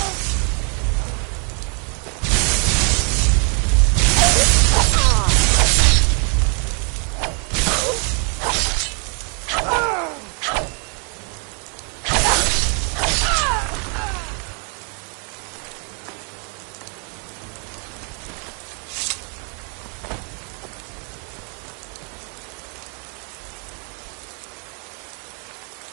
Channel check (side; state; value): left; quieter; 39.5 dB